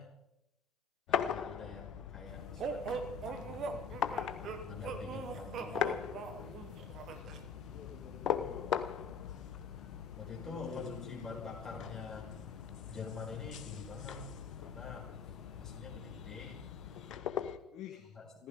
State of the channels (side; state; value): right; quieter; 5.0 dB